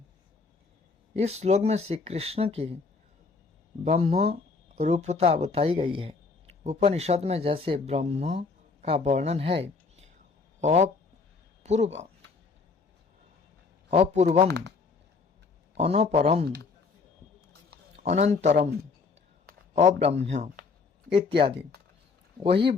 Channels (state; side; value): quieter; right; 4.5 dB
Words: इस श्लोक में श्री कृष्ण की ब्रह्म रूपता बताई गई है। उपनिषद में जैसे ब्रह्म का वर्णन है, अपूर्वम, अनपरम, अनंतरम, अब्रह्म इत्यादि, वही